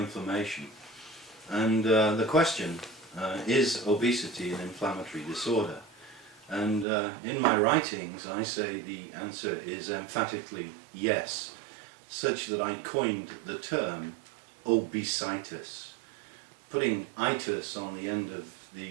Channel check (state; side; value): drops out; left; at 6.9 s